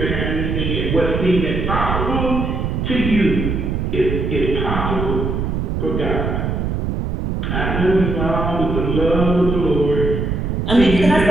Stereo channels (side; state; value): right; noise; rumble, 1 dB below the sound